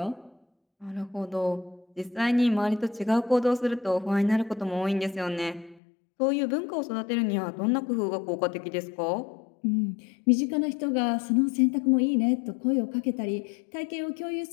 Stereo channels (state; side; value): drops out; right; at 5.8 s